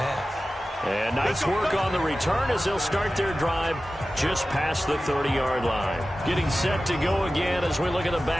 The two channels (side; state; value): both; normal; correlation 0.95